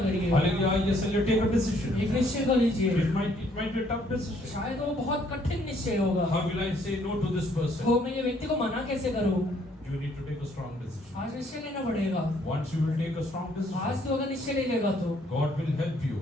करिए। Hallelujah, yes, hallelujah, take a decision. एक निश्चय कर लीजिए। It might be a tough decision. शायद वो बहुत कठिन निश्चय होगा। How will I say no to this person? तो मैं ये व्यक्ति को मना कैसे करूं? You need to take a strong decision. आज निश्चय लेना पड़ेगा। Once you will take a strong आज decision, तो अगर निश्चय ले लेगा तो God will help you.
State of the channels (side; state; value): both; normal; correlation 0.65